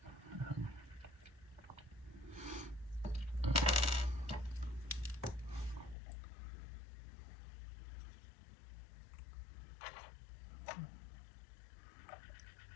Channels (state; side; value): drops out; right; at 6.0 s